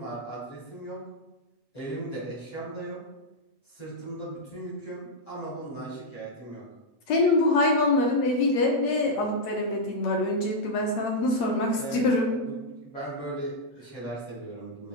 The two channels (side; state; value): right; late; 8.7 ms